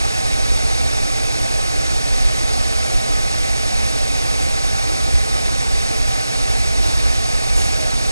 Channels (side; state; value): both; inverted; correlation -0.92